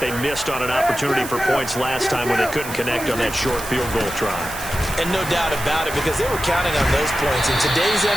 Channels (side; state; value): right; noise; hiss, 11 dB below the sound